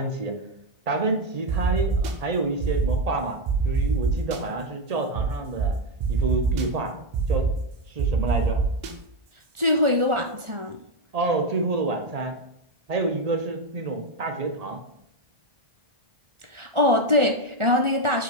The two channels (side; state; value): left; late; 1.4 ms